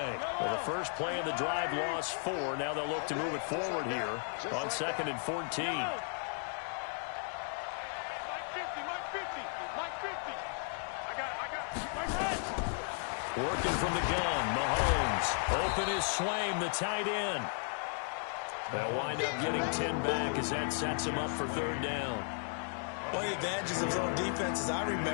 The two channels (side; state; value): right; silent; 55 dB below the other